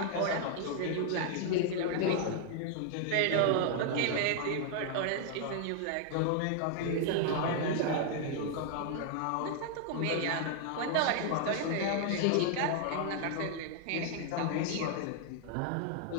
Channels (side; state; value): both; different; correlation 0.00